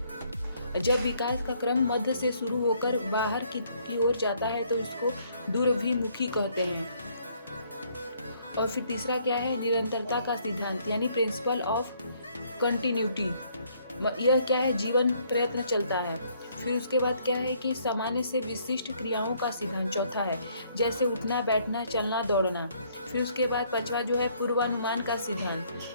जब विकास का क्रम मध्य से शुरू होकर बाहर की ओर जाता है तो इसको दूरभिमुखी कहते हैं। और फिर तीसरा क्या है, निरंतरता का सिद्धांत, यानी प्रिंसिपल ऑफ कंटिन्यूटी। यह क्या है, जीवन प्रयत्न चलता है। फिर उसके बाद क्या है कि सामान्य से विशिष्ट क्रियाओं का सिद्धांत चौथा है, जैसे उठना, बैठना, चलना, दौड़ना। फिर उसके बाद पांचवा जो है पूर्वानुमान का सिद्धांत।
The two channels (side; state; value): both; inverted; correlation -0.66